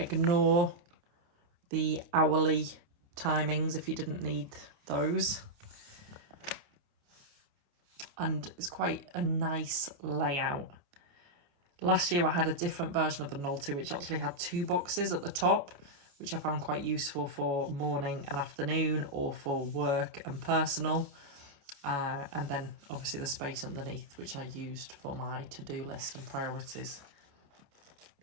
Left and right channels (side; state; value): left; late; 28 ms